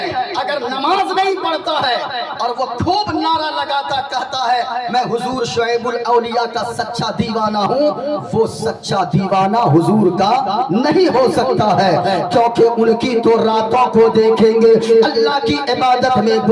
اگر نماز نہیں پڑھتا ہے اور وہ خوب نعرہ لگاتا کہتا ہے میں حضور شعیب الاولیاء کا سچا دیوانہ ہوں، وہ سچا دیوانہ حضور کا نہیں ہو سکتا ہے، کیونکہ ان کی تو راتوں کو دیکھیں گے اللہ کی عبادت میں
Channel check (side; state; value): both; identical; correlation 1.00